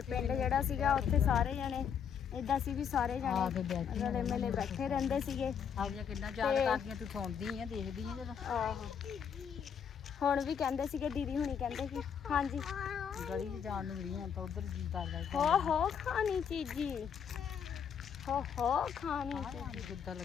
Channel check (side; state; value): right; quieter; 7.6 dB